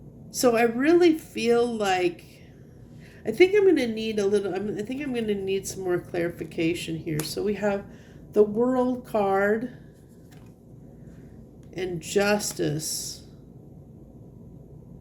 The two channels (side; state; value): both; identical; correlation 1.00